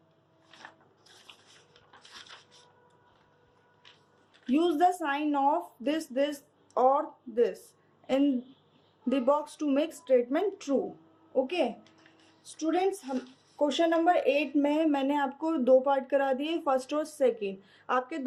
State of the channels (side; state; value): both; identical; correlation 1.00